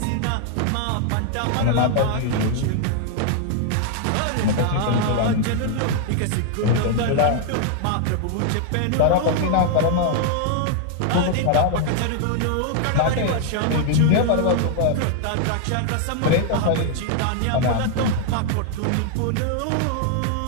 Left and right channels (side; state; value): both; different; correlation 0.00